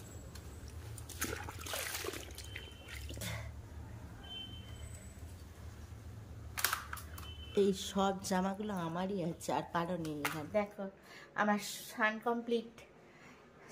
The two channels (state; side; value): identical; both; correlation 1.00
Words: এই সব জামাগুলো আমারই আছে, আর কারো নেই। এখানে দেখো আমার সাউন্ড